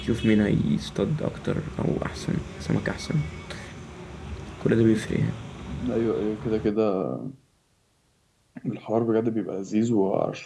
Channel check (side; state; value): both; identical; correlation 1.00